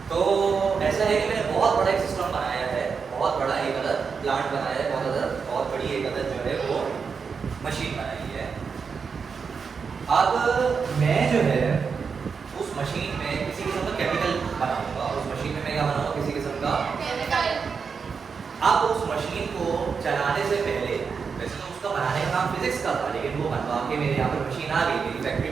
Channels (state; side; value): quieter; left; 5.7 dB